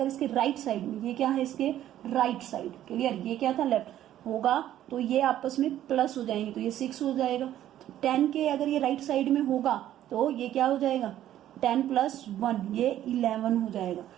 इसके राइट साइड में, ये क्या है इसके राइट साइड, क्लियर, ये क्या था लेफ्ट होगा, तो ये आपस में प्लस हो जाएंगे, तो ये 6 हो जाएगा. 10 के अगर ये राइट साइड में होगा तो ये क्या हो जाएगा, 10 + 1 ये 11 हो जाएगा.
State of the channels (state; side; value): quieter; left; 12.2 dB